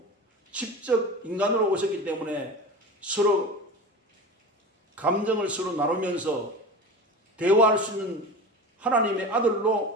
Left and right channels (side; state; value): both; normal; correlation 0.31